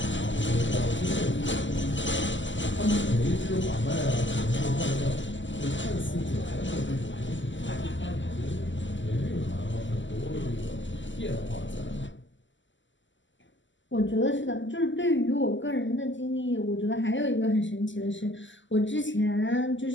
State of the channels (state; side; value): late; right; 0.54 ms